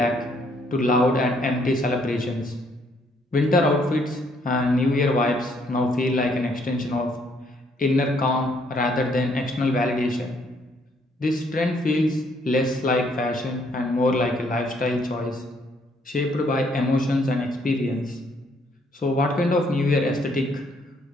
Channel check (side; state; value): both; normal; correlation 0.68